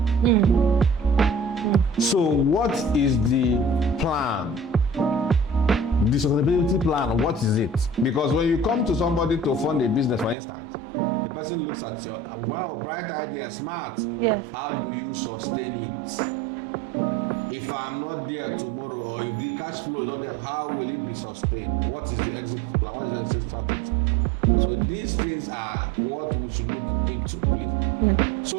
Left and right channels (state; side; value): drops out; left; at 10.4 s